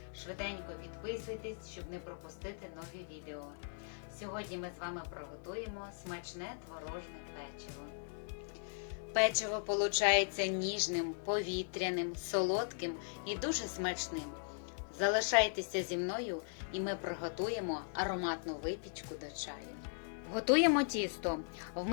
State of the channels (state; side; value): silent; right; digital silence